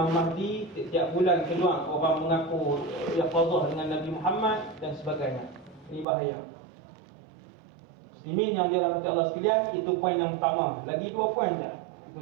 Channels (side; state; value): left; drops out; at 6.1 s